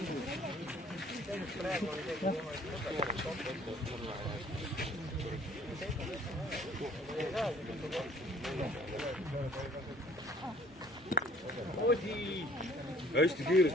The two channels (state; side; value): normal; both; correlation 0.55